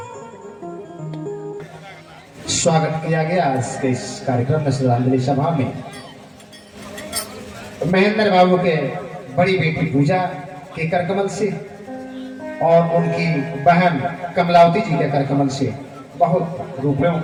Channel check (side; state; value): both; identical; correlation 1.00